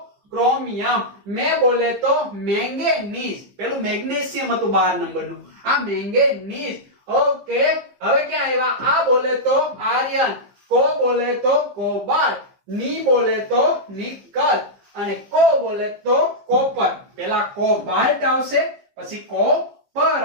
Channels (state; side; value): late; left; 15 ms